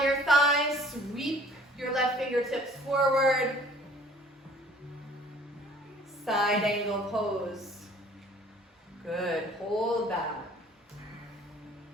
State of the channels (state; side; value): normal; both; correlation 0.53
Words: your thigh. Sweep your left fingertips forward. Side angle pose. Good. Hold that.